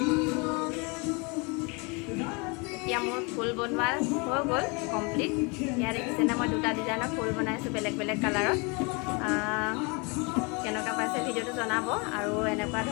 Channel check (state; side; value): quieter; right; 30.6 dB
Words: এতিয়া মোৰ ফুল বনোৱা হৈ গ'ল কমপ্লিট। ইয়াত দেখিছেনে মই 2টা ডিজাইনৰ ফুল বনাইছোঁ বেলেগ বেলেগ কালাৰত। কেনেকুৱা পাইছে ভিডিঅ'টো জনাব, আৰু এনেকুৱা